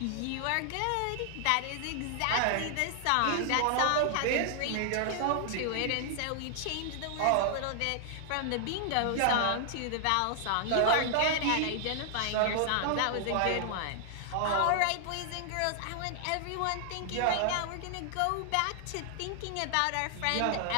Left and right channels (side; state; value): both; different; correlation 0.00